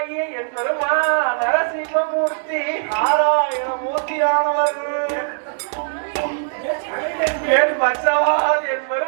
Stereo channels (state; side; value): silent; left; digital silence